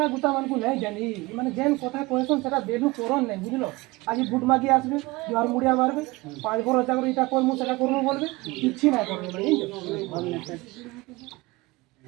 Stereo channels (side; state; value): left; quieter; 22.4 dB